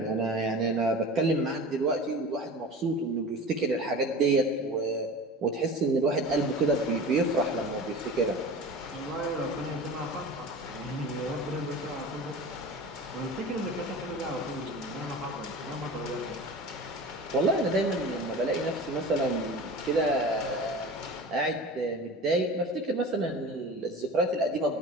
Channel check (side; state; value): both; normal; correlation 0.35